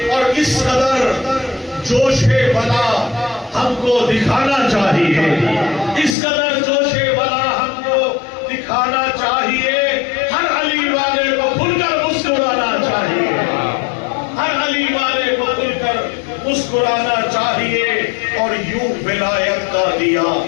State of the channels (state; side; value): drops out; right; at 6.2 s